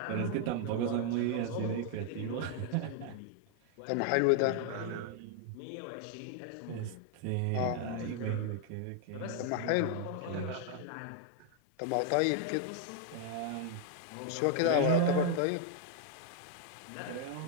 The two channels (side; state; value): both; different; correlation 0.00